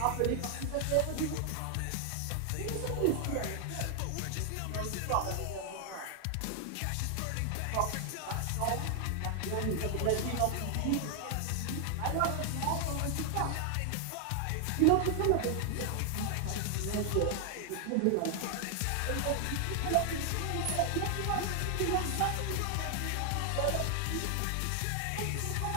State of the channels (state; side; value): different; both; correlation 0.00